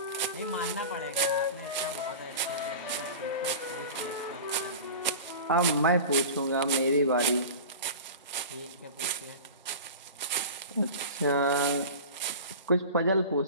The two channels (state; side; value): inverted; both; correlation -0.34